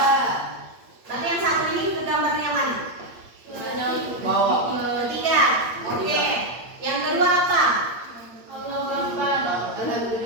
Berarti yang satu ini gambarnya yang mana? Ketiga. Oke. Yang kedua apa? Alhamdulillah.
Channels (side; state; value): left; late; 8.6 ms